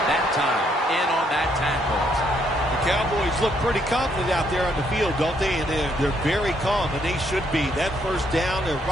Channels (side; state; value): both; normal; correlation 0.71